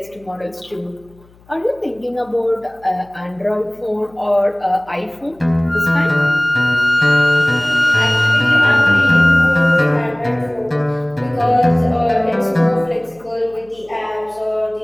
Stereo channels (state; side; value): noise; left; hum, 29 dB below the sound